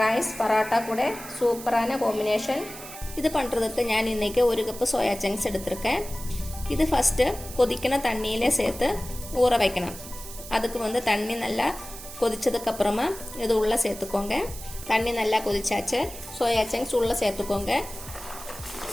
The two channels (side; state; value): right; noise; hiss, 13 dB below the sound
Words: பரோட்டா கூட சூப்பரான காம்பினேஷன். இது பண்ணுறதுக்கு நான் இன்றைக்கி 1 கப்பு சோயா சங்க்ஸ் எடுத்திருக்கேன். இது ஃபஸ்ட்டு கொதிக்கிற தண்ணியிலே சேர்த்து ஊற வைக்கணும். அதுக்கு வந்து தண்ணி நல்லா கொதிச்சதுக்கப்புறமா இது உள்ளே சேர்த்துக்கோங்க. தண்ணி நல்லா கொதிச்சாச்சு. சோயா சங்க்ஸ் உள்ளே சேர்த்துக்கோங்க.